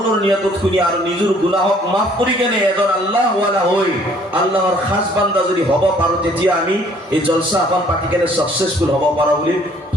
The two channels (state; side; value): normal; both; correlation 0.60